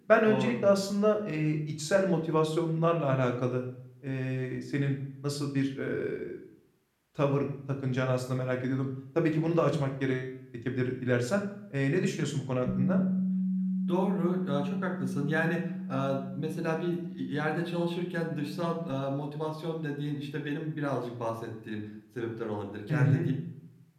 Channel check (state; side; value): identical; both; correlation 1.00